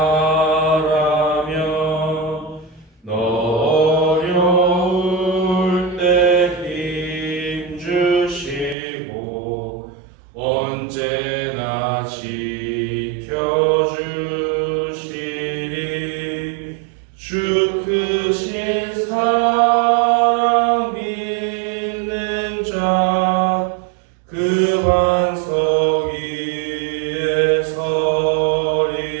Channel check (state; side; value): drops out; left; at 8.8 s